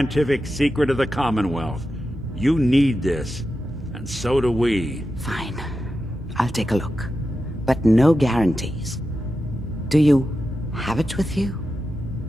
secret of the Commonwealth. You need this, and so do we. Fine. I'll take a look. But no guarantees. Do you have it with you?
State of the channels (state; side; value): normal; both; correlation 0.90